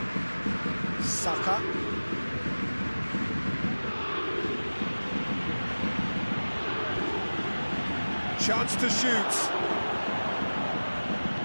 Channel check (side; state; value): both; inverted; correlation -1.00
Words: Saka. Chance to shoot.